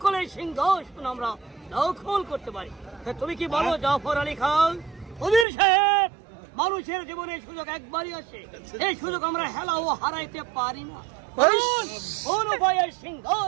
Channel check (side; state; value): left; drops out; at 5.5 s